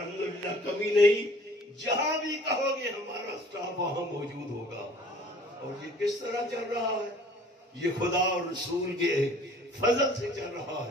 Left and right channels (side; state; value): both; normal; correlation 0.52